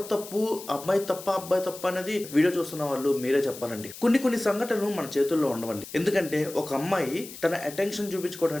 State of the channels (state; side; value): noise; left; hiss, 14 dB below the sound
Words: తప్పు, అమ్మాయి తప్ప అబ్బాయి తప్ప అనేది వీడియో చూస్తున్న వాళ్ళు మీరే చెప్పాలండి. కొన్ని సంఘటనలు మన చేతుల్లో ఉండవండి. ఎందుకంటే ఒక అమ్మాయి తన అటెన్షన్